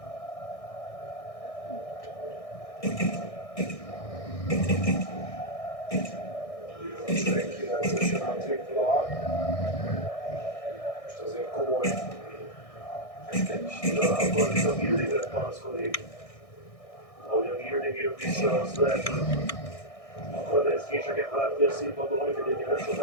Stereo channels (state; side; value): late; right; 1.6 ms